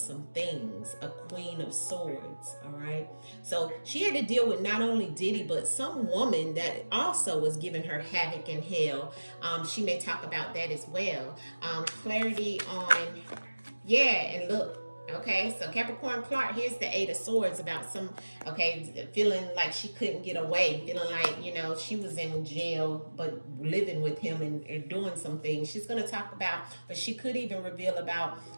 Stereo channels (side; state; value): both; inverted; correlation -1.00